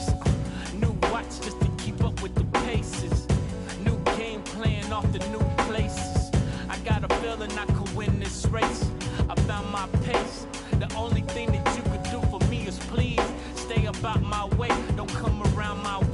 new watch just to keep up with the paces, new game plan off the new places. I got a feeling I could win this race. I found my pace. The only thing that you could do for me is please stay up about my way. Don't come around my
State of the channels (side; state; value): both; identical; correlation 1.00